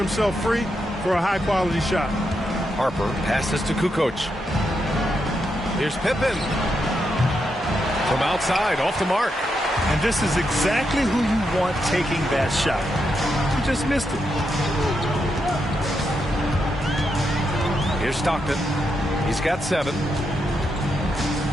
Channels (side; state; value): both; normal; correlation 0.83